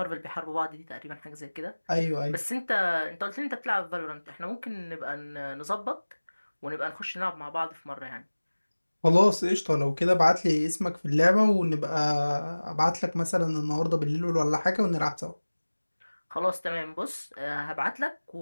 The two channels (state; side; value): inverted; both; correlation -1.00